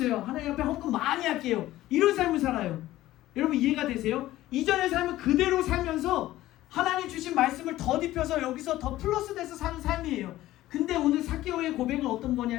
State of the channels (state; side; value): quieter; right; 15.4 dB